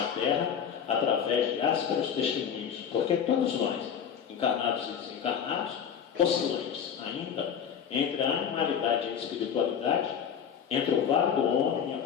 terra, através de ásperos testemunhos, porque todos nós, encarnados e desencarnados, oscilantes ainda entre a animalidade e a espiritualidade, entre o vale do homem e a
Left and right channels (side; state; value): right; quieter; 7.9 dB